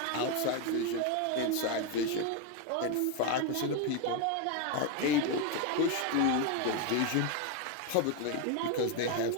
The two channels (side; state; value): both; different; correlation 0.01